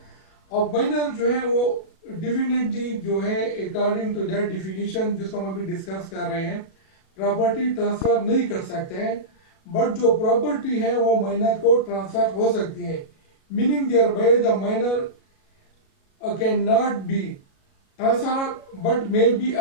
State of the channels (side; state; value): right; late; 37 ms